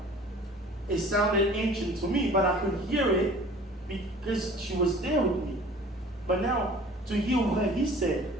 it sounded ancient to me, but I could hear it because she was there with me. But now, to hear what he said,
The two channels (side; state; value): both; normal; correlation 0.47